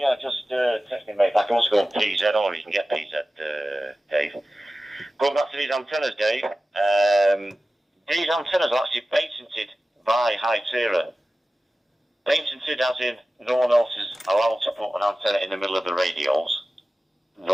just text me, mate. I can also go on PZ, or you can get PZ, Dave. Going back to these antennas, Dave, these antennas are actually patented by Hytera. Patented as in no one else is allowed to put an antenna in the middle of the radios.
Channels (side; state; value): both; normal; correlation 0.95